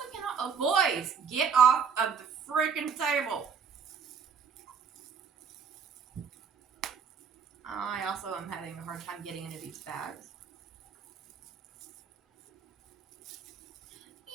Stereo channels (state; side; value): quieter; left; 6.5 dB